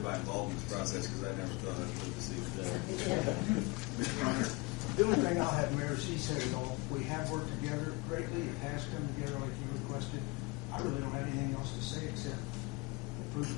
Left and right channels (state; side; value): quieter; right; 25.7 dB